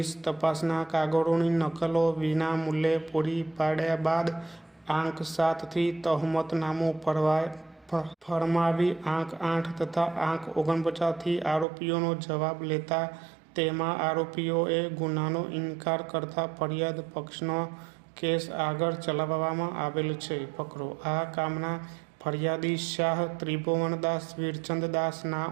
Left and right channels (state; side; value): drops out; left; at 11.7 s